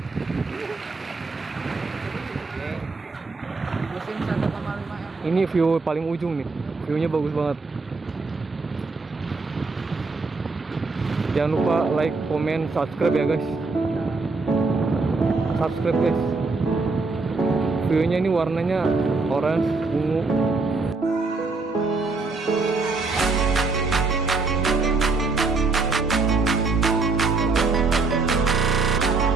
musim 1,5 M. Ini view paling ujung nih, viewnya bagus banget. Jangan lupa like, comment, subscribe ya guys. Subscribe guys. Viewnya ini warnanya orange, ungu,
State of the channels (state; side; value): quieter; left; 3.9 dB